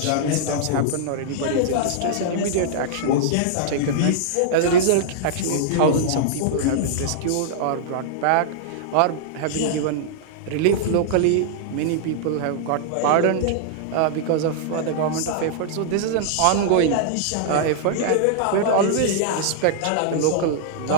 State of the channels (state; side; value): different; both; correlation -0.01